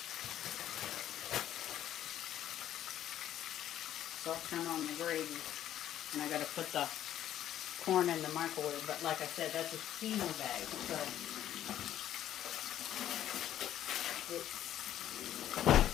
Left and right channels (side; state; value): right; quieter; 11.6 dB